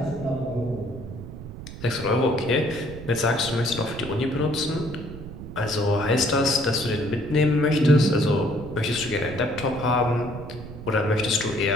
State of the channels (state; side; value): noise; right; rumble, 12 dB below the sound